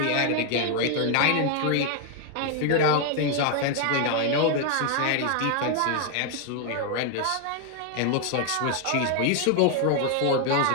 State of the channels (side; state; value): both; different; correlation 0.01